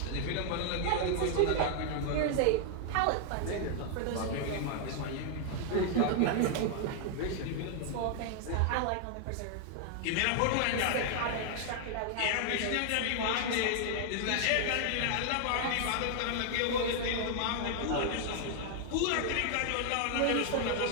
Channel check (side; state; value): both; different; correlation 0.00